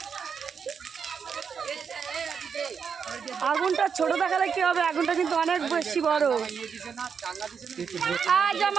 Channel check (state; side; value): quieter; left; 6.5 dB